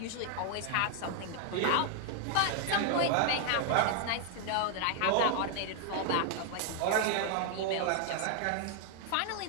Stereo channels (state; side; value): different; both; correlation 0.00